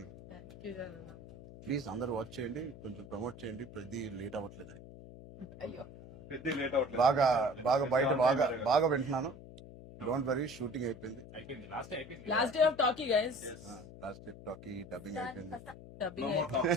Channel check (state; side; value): noise; left; hum, 16 dB below the sound